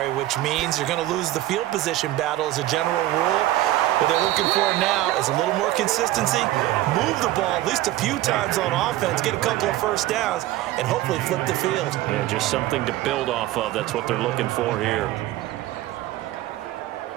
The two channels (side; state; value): left; quieter; 15.4 dB